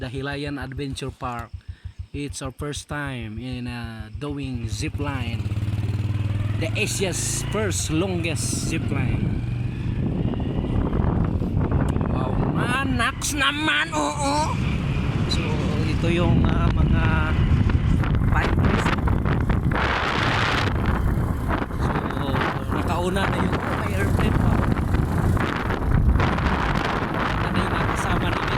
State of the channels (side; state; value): both; identical; correlation 1.00